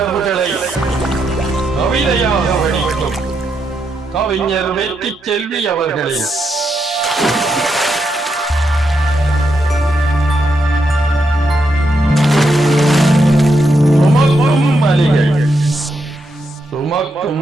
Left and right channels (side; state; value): both; normal; correlation 0.81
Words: கவிதையாக வடிக்கும் கவிஞர் வெற்றி செல்வி அவர்களே. சுமக்கும் வலிகள்